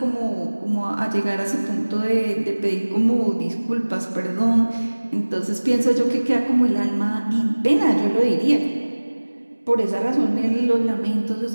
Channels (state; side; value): inverted; both; correlation -1.00